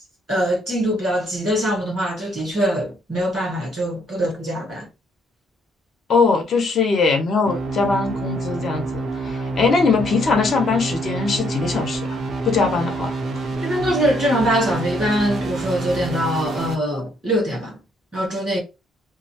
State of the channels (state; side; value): normal; both; correlation 0.69